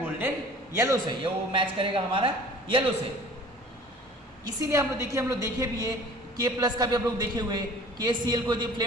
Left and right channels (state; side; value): normal; both; correlation 0.47